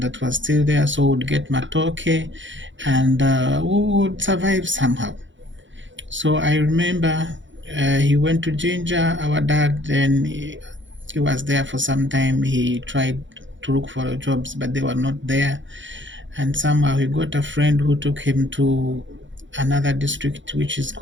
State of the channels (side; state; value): left; late; 0.55 ms